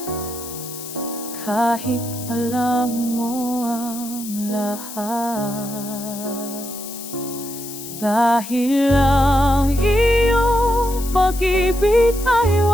kahit alam mo ang lahat. Dahil ang iyong pag-ibig ay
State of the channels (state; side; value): noise; left; hiss, 11 dB below the sound